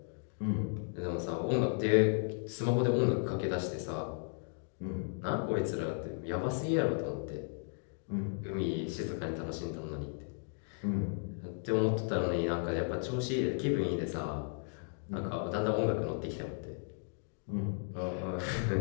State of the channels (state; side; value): silent; right; 54 dB below the other